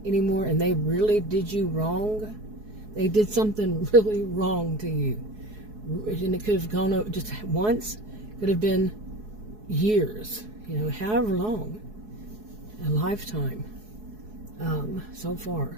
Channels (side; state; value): left; late; 4.7 ms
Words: anymore, and they really did you wrong, they did something really wrong to you, and it could have gone over just once, could have been years, however long, a lifetime, so far.